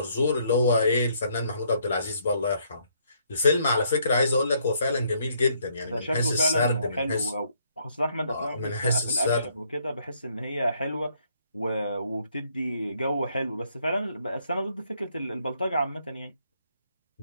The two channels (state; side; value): inverted; both; correlation -0.70